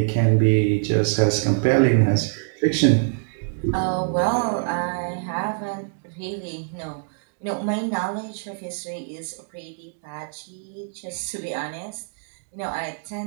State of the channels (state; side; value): silent; left; digital silence